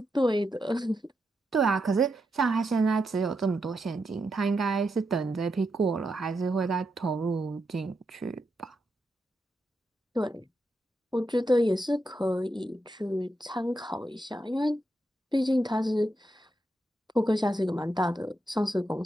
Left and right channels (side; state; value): both; normal; correlation 0.84